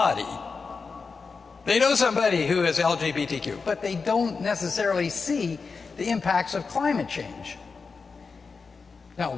They know somebody who is LGBTQ, but they don't necessarily see the impacts of climate change. Now,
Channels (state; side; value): quieter; right; 4.8 dB